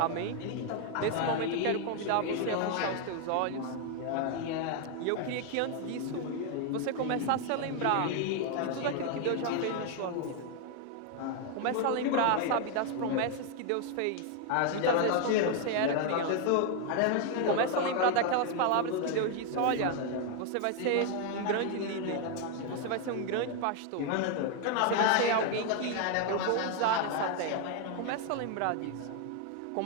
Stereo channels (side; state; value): both; different; correlation 0.01